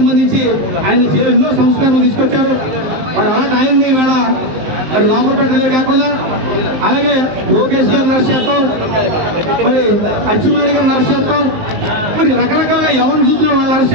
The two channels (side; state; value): left; late; 19 ms